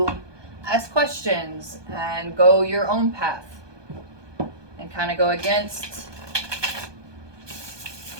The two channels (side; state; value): left; late; 1.2 ms